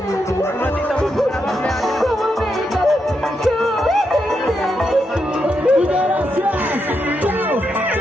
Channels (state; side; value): normal; both; correlation 0.83